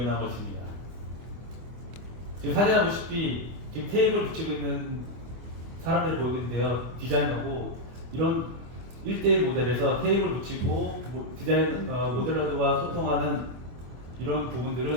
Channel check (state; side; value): late; left; 24 ms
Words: 것입니다. 지금 사진에 보시피 지금 테이블 붙이고 있는 사람들이 보이고 있는데요. 디자이너고 이런 1대1 모델에서 테이블 붙이고 모델러들과 소통하는 이런